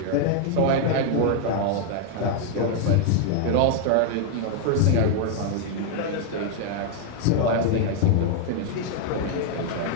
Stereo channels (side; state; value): both; different; correlation 0.00